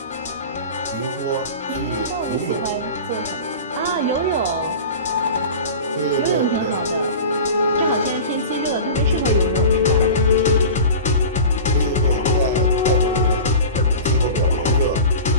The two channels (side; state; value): both; inverted; correlation -0.35